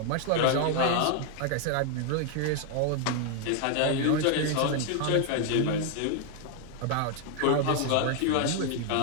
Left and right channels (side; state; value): both; different; correlation 0.00